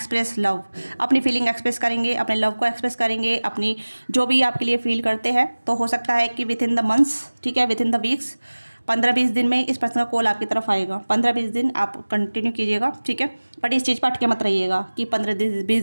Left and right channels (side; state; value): both; inverted; correlation -1.00